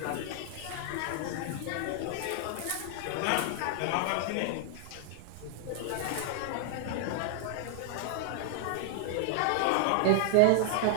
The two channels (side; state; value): both; different; correlation -0.01